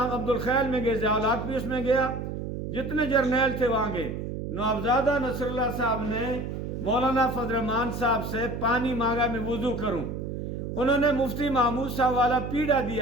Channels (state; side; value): noise; right; hum, 5 dB below the sound